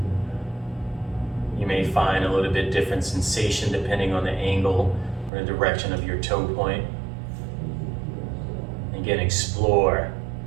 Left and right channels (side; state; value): left; drops out; at 5.3 s